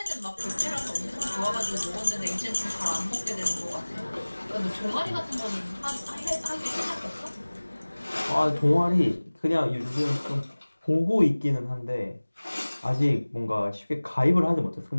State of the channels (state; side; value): inverted; both; correlation -1.00